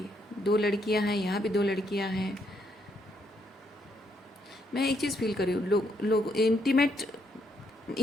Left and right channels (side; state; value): both; normal; correlation 0.75